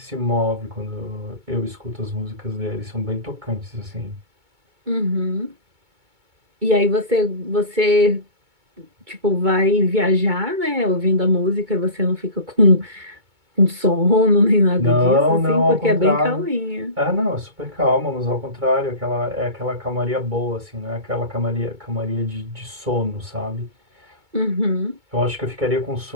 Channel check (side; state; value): left; late; 2.2 ms